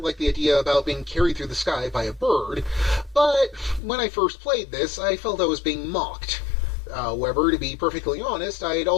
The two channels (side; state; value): right; drops out; at 3.8 s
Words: the idea about being carried through the sky by a bird, but when I first played this, I felt I was being mocked. However, to be perfectly honest, I'd